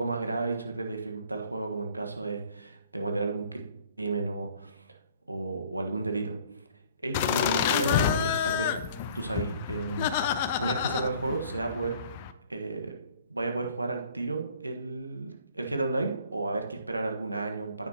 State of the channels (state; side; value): inverted; both; correlation -0.54